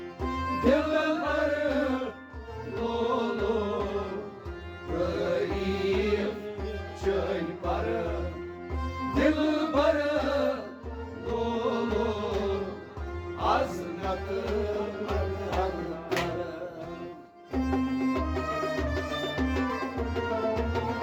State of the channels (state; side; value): identical; both; correlation 1.00